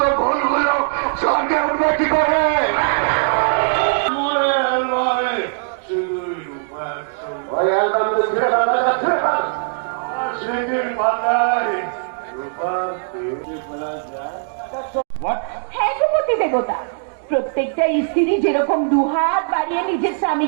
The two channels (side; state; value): left; silent; digital silence